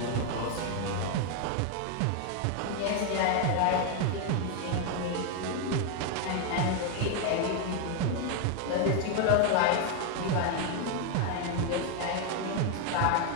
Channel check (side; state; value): both; different; correlation 0.01